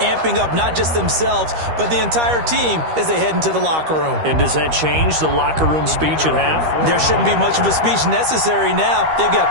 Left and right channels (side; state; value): left; late; 13 ms